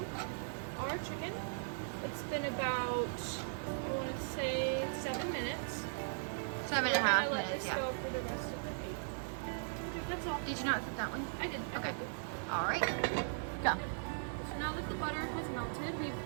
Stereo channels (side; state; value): left; silent; digital silence